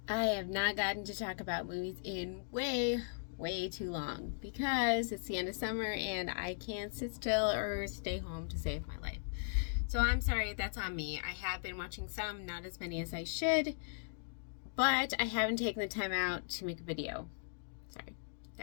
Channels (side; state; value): right; silent; digital silence